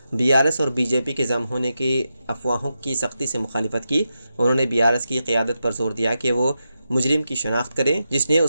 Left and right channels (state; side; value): inverted; both; correlation -0.88